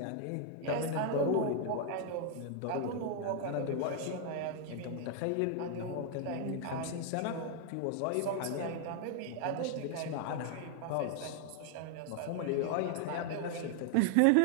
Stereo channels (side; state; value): both; different; correlation 0.00